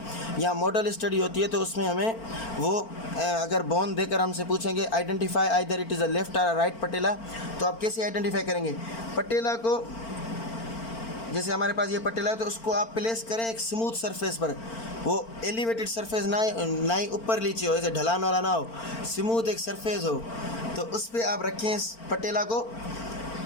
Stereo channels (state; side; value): late; right; 4.4 ms